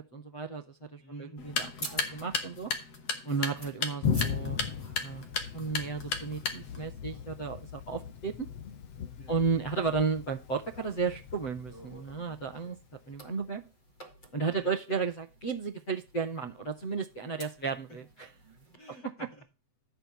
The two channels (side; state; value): right; late; 7.9 ms